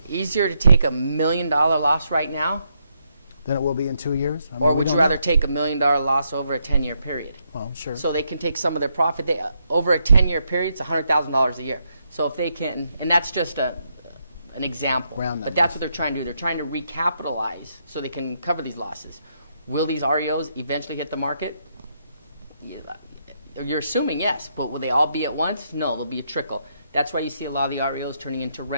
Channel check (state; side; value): inverted; both; correlation -0.78